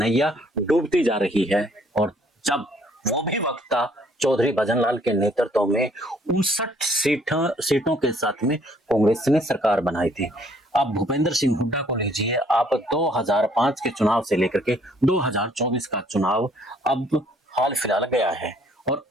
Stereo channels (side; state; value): both; normal; correlation 0.63